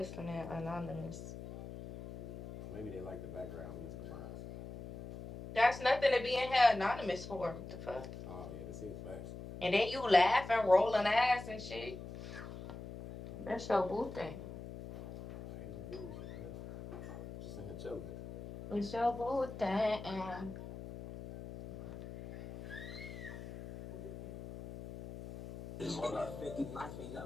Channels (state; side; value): noise; left; hum, 11 dB below the sound